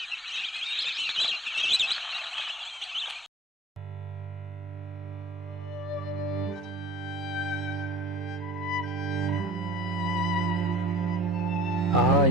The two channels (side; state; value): both; normal; correlation 0.46